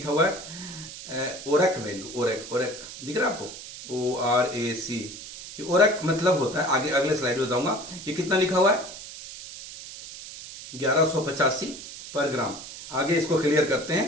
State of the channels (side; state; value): right; noise; hiss, 13 dB below the sound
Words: हुआ है ओरक वैल्यू, ओरक दिख रहा है आपको, ORAC। ओरक मतलब होता है, आगे अगले स्लाइड में बताऊंगा। ये कितना लिखा हुआ है? 1185 पर ग्राम। आगे इसको क्लियर करते हैं